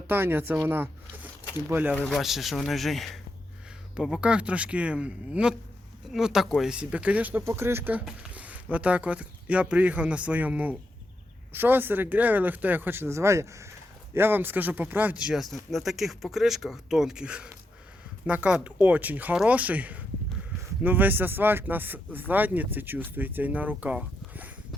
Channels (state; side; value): normal; both; correlation 0.83